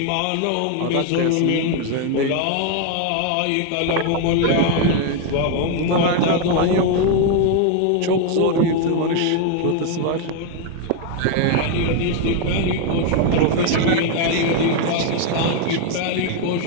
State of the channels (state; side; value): different; both; correlation 0.01